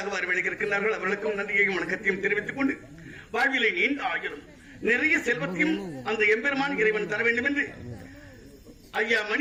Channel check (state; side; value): identical; both; correlation 1.00